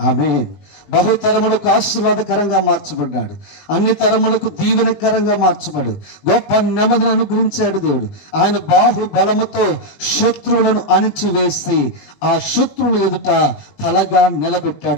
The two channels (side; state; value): right; late; 19 ms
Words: ఆమేన్. బహుతరములకు ఆశీర్వాదకరంగా మార్చబడ్డాడు. అన్ని తరములకు దీవెనకరంగా మార్చబడు. గొప్ప నెమ్మదిని అనుగ్రహించాడు దేవుడు. ఆయన బాహుబలముతో శత్రువులను అణిచివేసి ఆ శత్రువుల ఎదుట తలగా